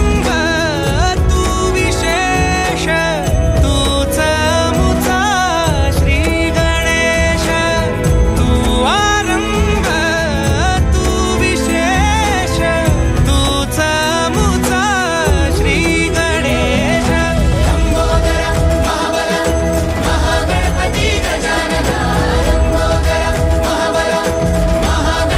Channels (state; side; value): identical; both; correlation 1.00